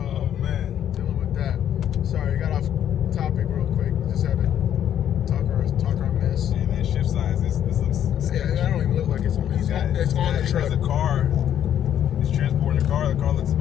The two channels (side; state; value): right; quieter; 10.2 dB